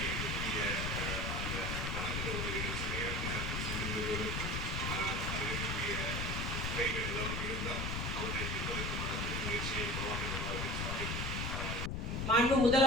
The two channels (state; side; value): noise; left; rumble, 1 dB below the sound